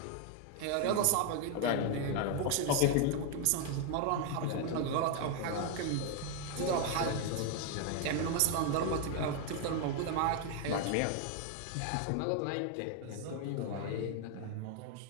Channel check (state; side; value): different; both; correlation 0.01